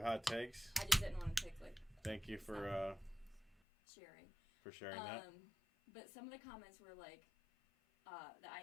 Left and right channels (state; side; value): drops out; right; at 3.6 s